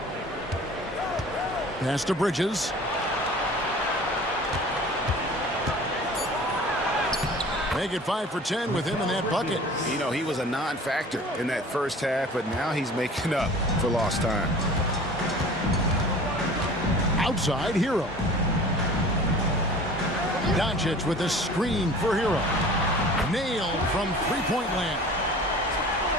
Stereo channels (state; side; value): normal; both; correlation 0.43